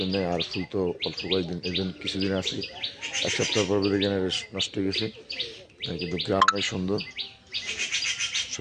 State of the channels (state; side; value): identical; both; correlation 1.00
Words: নেই, আর ফুল তো অল্প কয়েকদিন, এই জন্য কিছুদিন আছে, এক সপ্তাহ পর দেখে নষ্ট হয়ে গেছে। কিন্তু গ্রাম অনেক সুন্দর,